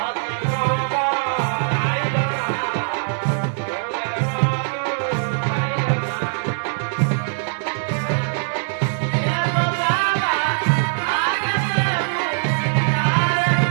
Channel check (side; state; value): left; silent; digital silence